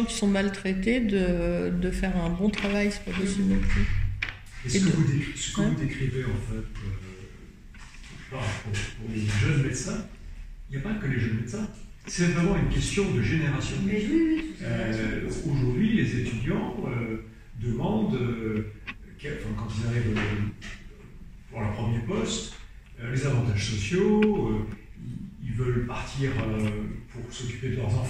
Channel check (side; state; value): both; identical; correlation 1.00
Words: qui sont maltraités de faire un bon travail, c'est pas possible non plus. Et ce que vous décrivez en fait pour les jeunes médecins, il n'y a pas que les jeunes médecins. C'est vraiment une question de génération. Aujourd'hui, les étudiants demandent, quand ils arrivent pour leur premier poste, les avantages sociaux, ils veulent partir pour s'occuper de leurs